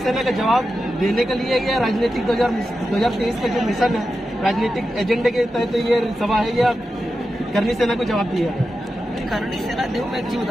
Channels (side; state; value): both; normal; correlation 0.90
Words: का जवाब देने के लिए या राजनीतिक 2023 का जो मिशन है, राजनीतिक एजेंडे के तहत ये सभा है, या करनी सेना को जवाब दिया? करनी सेना, देखो मैं एक चीज